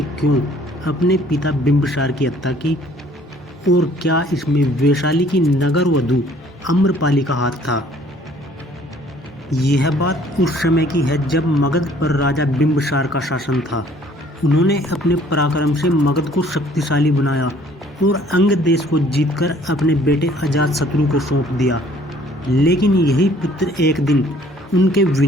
क्यों अपने पिता बिंबिसार की हत्या की, और क्या इसमें वैशाली की नगर वधू आम्रपाली का हाथ था। यह बात उस समय की है जब मगध पर राजा बिंबिसार का शासन था। उन्होंने अपने पराक्रम से मगध को शक्तिशाली बनाया और अंग देश को जीतकर अपने बेटे अजातशत्रु को सौंप दिया। लेकिन यही पुत्र एक दिन उनके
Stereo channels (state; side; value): normal; both; correlation 0.57